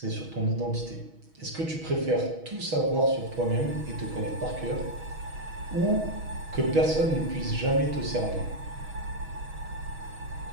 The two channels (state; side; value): late; left; 6.2 ms